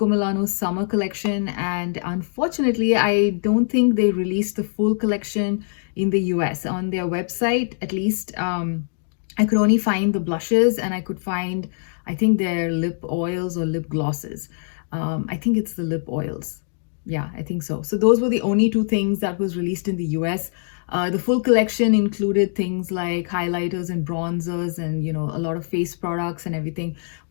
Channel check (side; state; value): right; silent; digital silence